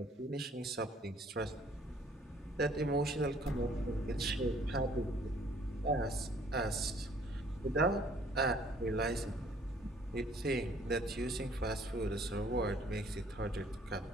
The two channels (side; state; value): both; normal; correlation 0.58